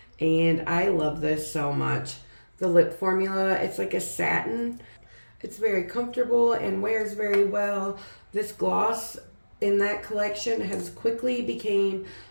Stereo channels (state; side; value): inverted; both; correlation -1.00